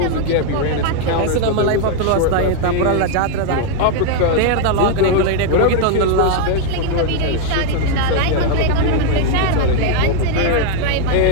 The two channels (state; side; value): different; both; correlation 0.00